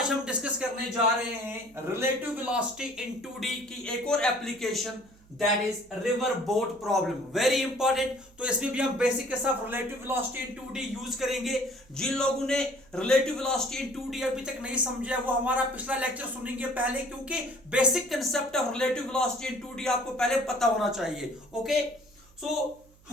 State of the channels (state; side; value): noise; right; hum, 27 dB below the sound